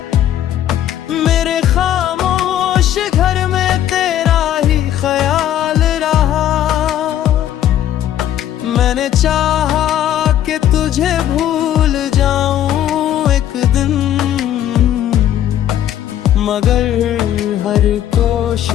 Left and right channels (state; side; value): quieter; right; 11.3 dB